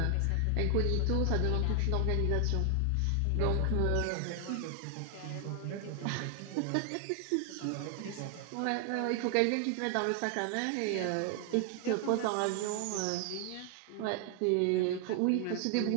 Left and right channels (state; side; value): different; both; correlation 0.00